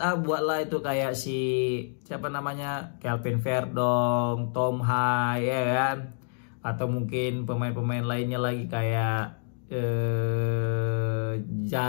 buatlah itu kayak si siapa namanya, Kelvin Verdong, Tom Hai ya kan. Atau mungkin pemain-pemain lainnya lagi kayak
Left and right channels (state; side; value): silent; right; digital silence